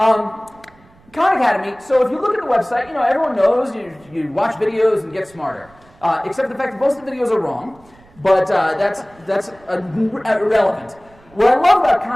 Khan Academy, so if you look at the website, everyone knows you watch videos and get smarter. Except the fact that most of the videos are wrong, but that's irrelevant. What I love about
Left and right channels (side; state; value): right; noise; rumble, 28 dB below the sound